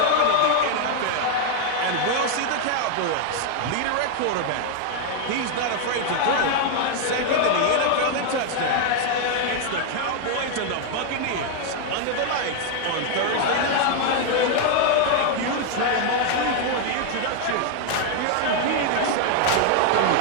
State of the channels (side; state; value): both; different; correlation 0.00